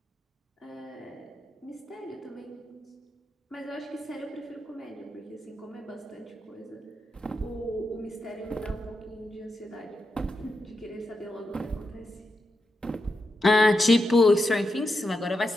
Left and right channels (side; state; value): both; normal; correlation 0.87